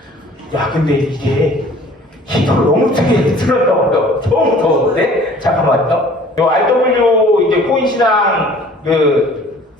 야, 근데 이게 히터를 너무 크게 틀었다고요. 너무 더운데? 잠깐만요. 요 RW 이제 코인 시장 그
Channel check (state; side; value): normal; both; correlation 0.51